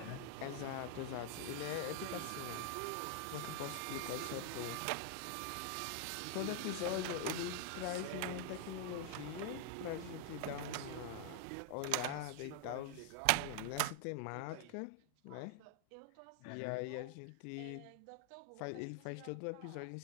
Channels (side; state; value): both; different; correlation 0.00